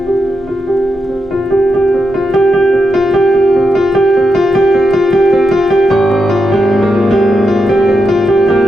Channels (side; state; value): both; normal; correlation 0.85